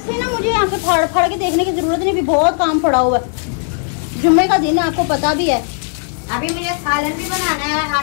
ना मुझे यहाँ पे फाड़ फाड़ के देखने की जरूरत नहीं, अभी बहुत काम पड़ा हुआ है। जुम्मे का दिन है, आपको पता भी है। अभी मुझे सालन भी बनाना है,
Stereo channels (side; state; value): right; silent; 58 dB below the other